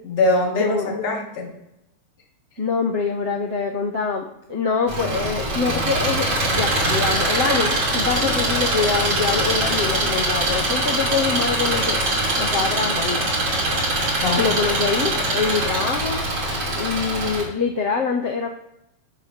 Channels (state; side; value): late; left; 7.7 ms